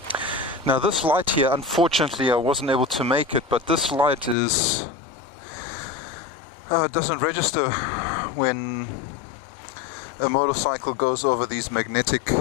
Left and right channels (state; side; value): drops out; right; at 4.4 s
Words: Now this light here, unfortunately I wasn't able to make it, but this light is it doesn't register when a motorcycle goes over these magnetic